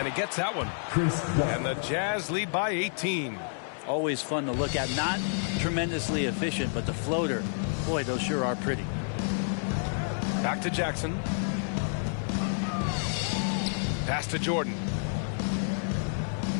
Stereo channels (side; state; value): right; silent; 58 dB below the other